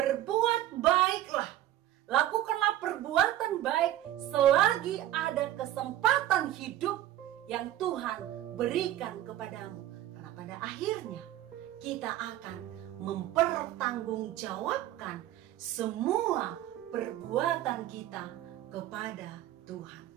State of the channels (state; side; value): quieter; left; 13.3 dB